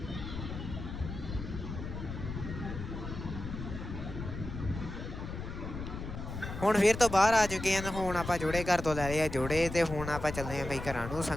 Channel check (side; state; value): left; noise; rumble, 7 dB below the sound